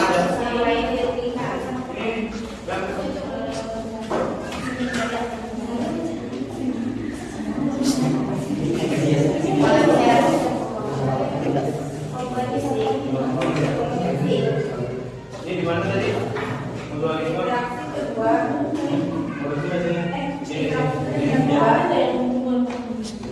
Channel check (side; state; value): both; identical; correlation 1.00